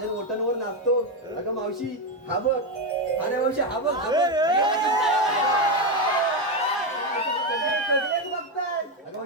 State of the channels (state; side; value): normal; both; correlation 0.09